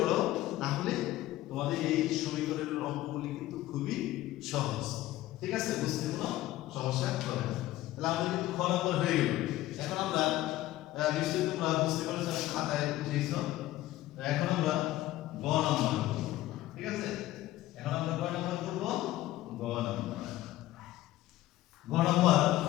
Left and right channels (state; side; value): quieter; right; 15.6 dB